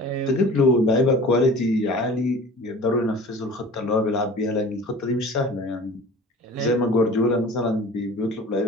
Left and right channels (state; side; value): normal; both; correlation 0.42